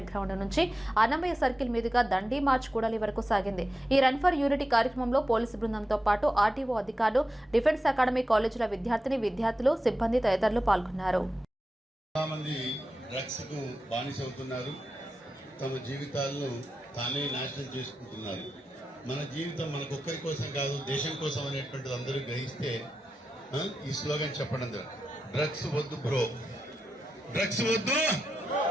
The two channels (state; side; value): normal; both; correlation 0.90